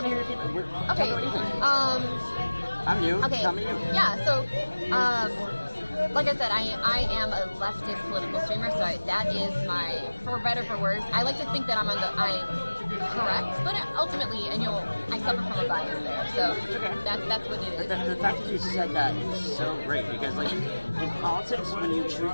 to hear your feedback. Okay. What do you think? I'm new. Okay. Tell me you. Yeah. So. Like I said, I am a leftist political streamer, so that is my, for better for worse. I like to think that I'm correct, but ultimately, and I suffer from a bias there, so that's what it is. The fact that you said that is so great because, like, in politics, when you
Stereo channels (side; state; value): both; inverted; correlation -1.00